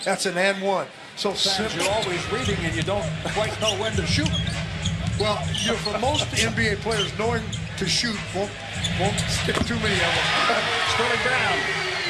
That's an and one. So simple. You're always reading and you don't quite know when to shoot. Well, for most NBA players, knowing to shoot won't stick too many of them. Sterling Brown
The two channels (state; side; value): identical; both; correlation 1.00